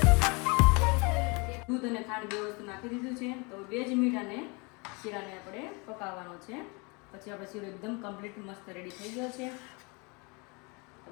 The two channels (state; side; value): quieter; right; 29.5 dB